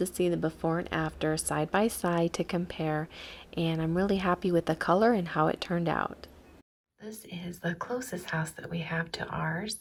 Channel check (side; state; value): both; identical; correlation 1.00